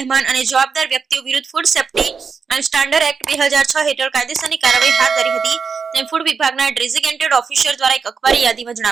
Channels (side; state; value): left; quieter; 5.5 dB